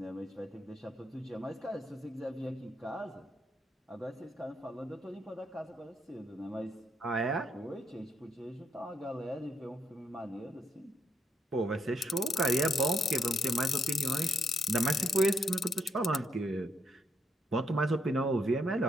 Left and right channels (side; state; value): both; normal; correlation 0.76